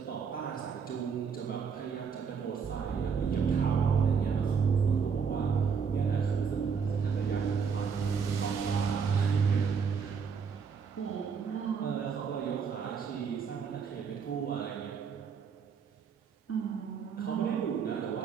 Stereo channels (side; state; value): left; quieter; 6.2 dB